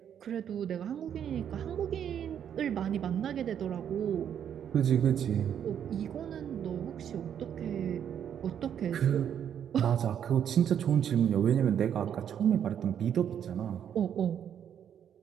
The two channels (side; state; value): left; quieter; 9.0 dB